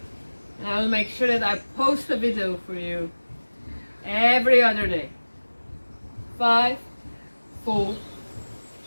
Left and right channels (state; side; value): inverted; both; correlation -1.00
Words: And I will make sure that I post a video for you every other day. 5, 4,